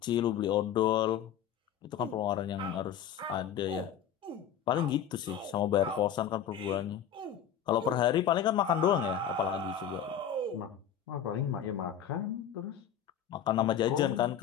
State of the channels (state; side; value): quieter; right; 9.0 dB